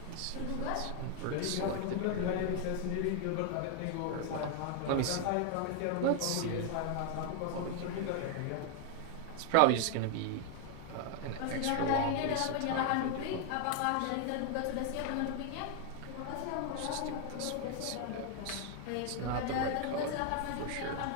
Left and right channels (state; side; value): different; both; correlation 0.00